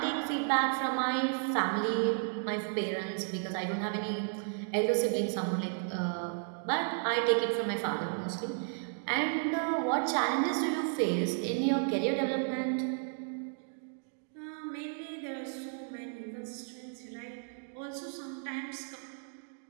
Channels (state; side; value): silent; left; 55 dB below the other